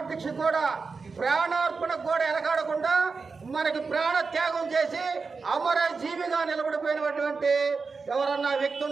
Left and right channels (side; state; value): left; quieter; 4.6 dB